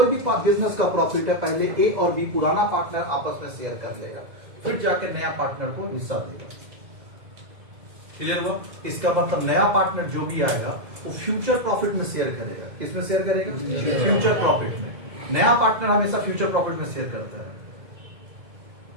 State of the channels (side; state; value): left; late; 2.0 ms